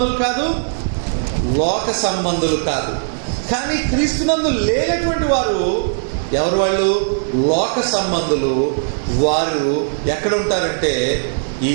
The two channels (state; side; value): silent; left; digital silence